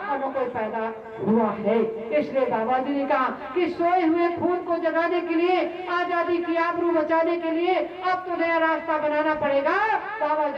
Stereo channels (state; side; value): identical; both; correlation 1.00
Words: और न कोई पैदा हुआ है। इसलिए बाबा जी ने कहा कि सोए हुए खून को जगाने के लिए, आजादी की आबरू बचाने के लिए अब तो नया रास्ता बनाना पड़ेगा। बाबा